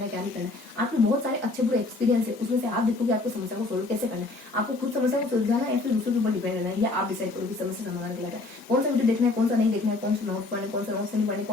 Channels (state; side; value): quieter; right; 3.2 dB